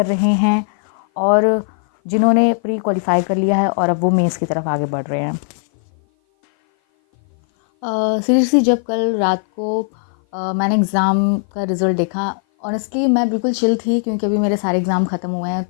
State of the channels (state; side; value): silent; right; 56 dB below the other